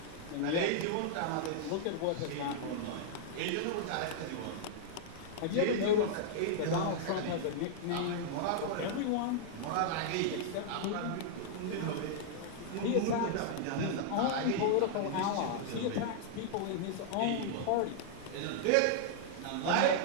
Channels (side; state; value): both; different; correlation -0.01